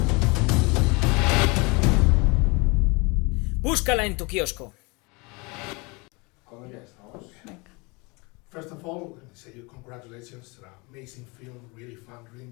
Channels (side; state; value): right; quieter; 27.7 dB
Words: Búscala en tu kiosco. First of all, let me say you congratulations. An amazing film, really fun, really